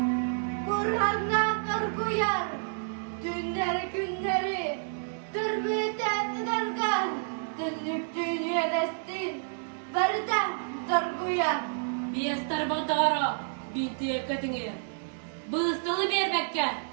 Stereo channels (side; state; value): left; silent; digital silence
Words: burhandan karguyar, günleri, türbüten darga, dünlük dünya destin, bardan darguyar. Biyestar bağdara, binti ekatine, bığıstalı berbekke,